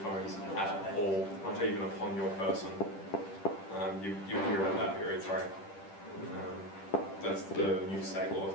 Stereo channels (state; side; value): late; right; 10 ms